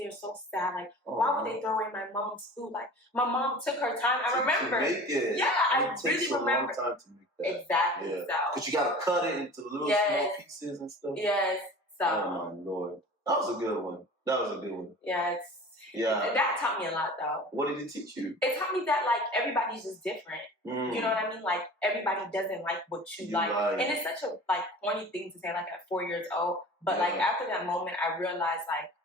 so sad. Like, why would they throw away my mom's food? Like, my mom took her time. I remember. To make it. Yeah, I really remember. It takes a long time to make that. Exactly. Yeah. So. Because you got to cut it into little small pieces and stuff. Yes. So. Oh, my Lord. That was a good one. Yeah, that taught me a lot, though. What did it teach you? It taught me that, like, everybody's just different. You know what I mean? Like, everybody doesn't like what you like. And it's such a, like, corny thing to say, like, at 4 years old. But, like, after that moment, I realized, like,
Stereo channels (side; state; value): both; normal; correlation 0.40